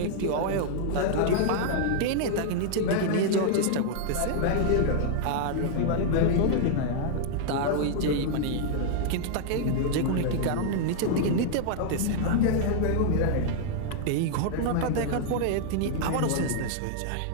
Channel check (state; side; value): different; both; correlation -0.01